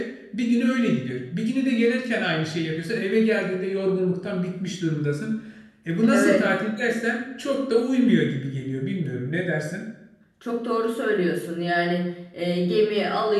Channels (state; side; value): identical; both; correlation 1.00